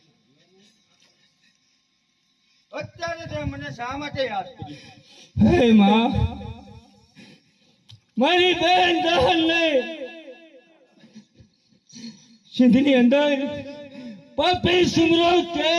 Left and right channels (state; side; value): identical; both; correlation 1.00